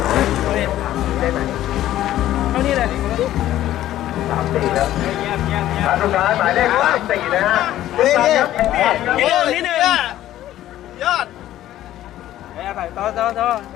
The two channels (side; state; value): right; quieter; 13.4 dB